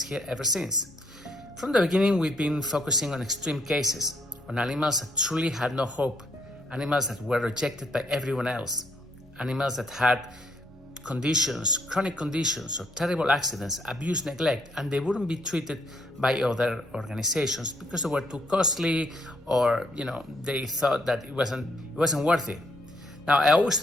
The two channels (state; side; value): normal; both; correlation 0.71